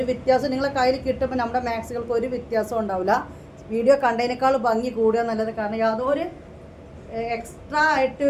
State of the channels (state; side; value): identical; both; correlation 1.00